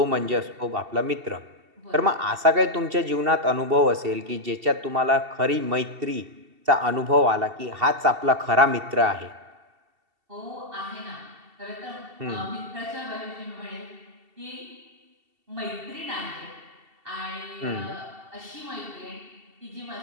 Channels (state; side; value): late; left; 2.7 ms